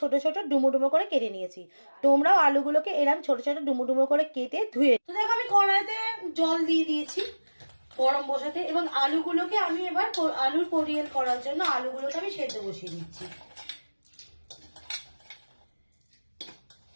ছোট ডুমো ডুমো করে কেটে নিয়েছি। তোমরাও আলুগুলোকে এরকম ছোট ছোট ডুমো ডুমো করে কেটে ধুয়ে। তো দেখো আমি কড়াইতে জল দিয়ে দিয়েছি গরম বসাতে, এবং আলুগুলোকে আমি এবার আলুর পরিয়েল করার জন্য আলুগুলোকে আমি সেদ্ধ বসিয়ে দিচ্ছি।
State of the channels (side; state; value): both; inverted; correlation -1.00